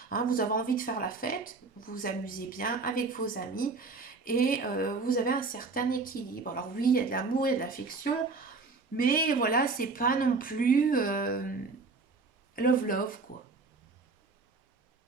Hein, vous avez envie de faire la fête, vous vous amusez bien avec vos amis. Et vous avez un certain équilibre. Alors oui, il y a de l'amour, il y a de l'affection. Mais voilà, c'est pas non plus love, quoi.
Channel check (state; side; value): quieter; left; 4.1 dB